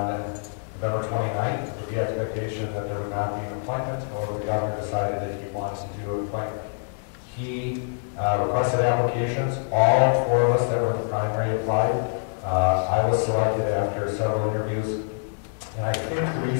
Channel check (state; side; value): silent; right; 61 dB below the other